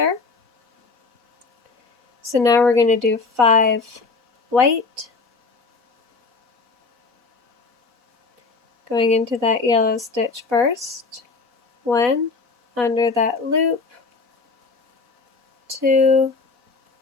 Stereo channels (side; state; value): right; quieter; 4.2 dB